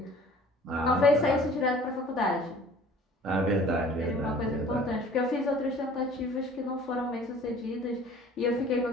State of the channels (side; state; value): both; normal; correlation 0.49